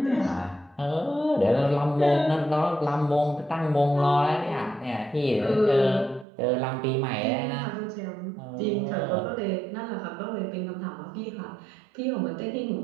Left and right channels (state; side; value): drops out; left; at 6.2 s